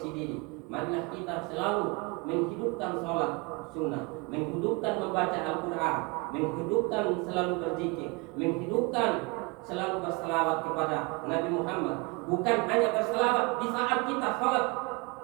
diri. Marilah kita selalu menghidupkan sholat sunnah, menghidupkan membaca Al-Quran, menghidupkan selalu berzikir, menghidupkan selalu berselawat kepada Nabi Muhammad. Bukan hanya berselawat di saat kita sholat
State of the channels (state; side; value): quieter; left; 28.1 dB